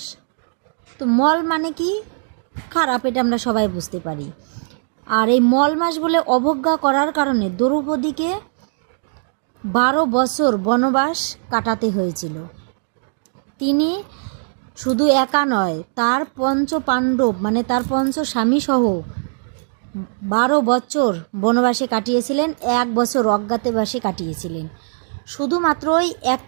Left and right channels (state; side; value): silent; left; digital silence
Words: তো মল মানে কি? খারাপ, এটা আমরা সবাই বুঝতে পারি। আর এই মল মাস বলে অবজ্ঞা করার কারণে দ্রৌপদীকে 12 বছর বনবাস কাটাতে হয়েছিল। তিনি শুধু একা নয়, তার পঞ্চ পাণ্ডব মানে তার পঞ্চ স্বামীসহ 12 বছর বনবাসে কাটিয়েছিলেন, 1 বছর অজ্ঞাতবাসে কাটিয়েছিলেন। শুধুমাত্র ওই